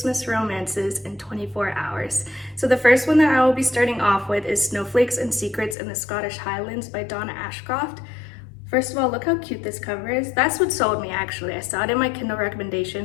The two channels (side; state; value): right; drops out; at 5.8 s